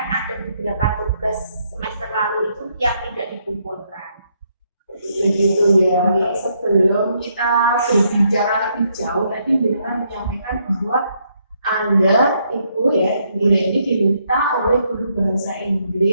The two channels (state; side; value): inverted; both; correlation -0.74